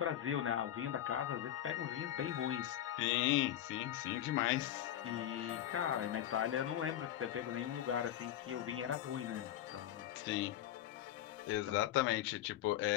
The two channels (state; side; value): quieter; right; 11.9 dB